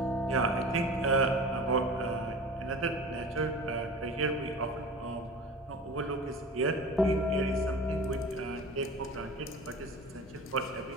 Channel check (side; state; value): both; normal; correlation 0.37